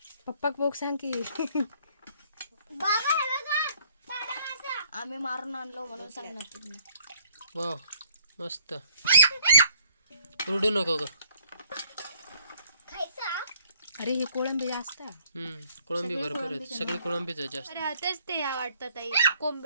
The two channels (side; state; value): both; inverted; correlation -0.62